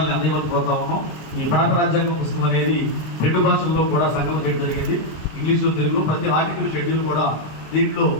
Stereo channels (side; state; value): right; late; 26 ms